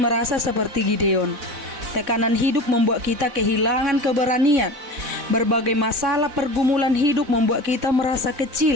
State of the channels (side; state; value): left; late; 4.0 ms